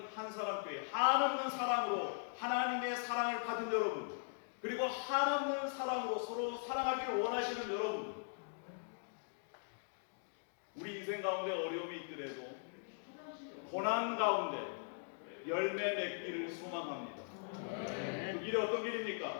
한사람교회 한없는 사랑으로 하나님의 사랑을 받은 여러분, 그리고 한없는 사랑으로 서로 사랑하기를 원하시는 여러분, 우리 인생 가운데 어려움이 있더라도 고난 가운데 열매 맺기를 소망합니다. 그 길이 어떤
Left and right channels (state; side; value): silent; right; digital silence